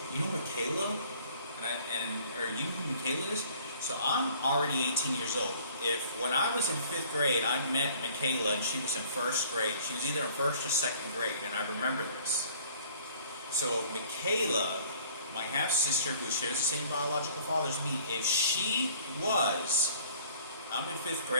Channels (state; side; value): inverted; both; correlation -0.53